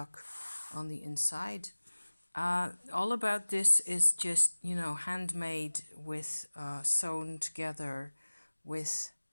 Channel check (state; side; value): inverted; both; correlation -1.00